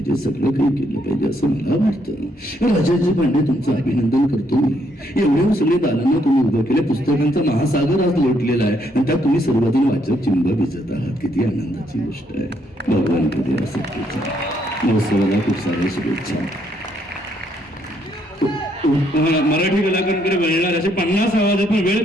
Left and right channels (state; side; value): normal; both; correlation 0.72